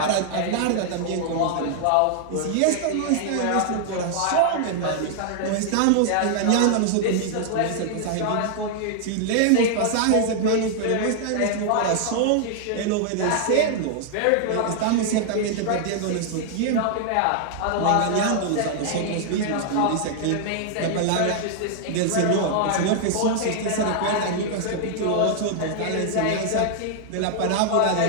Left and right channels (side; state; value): both; different; correlation 0.00